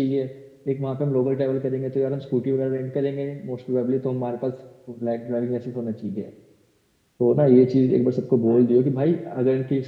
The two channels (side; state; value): both; identical; correlation 1.00